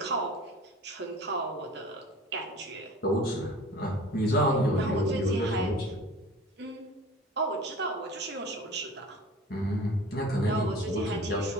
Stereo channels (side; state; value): both; normal; correlation 0.42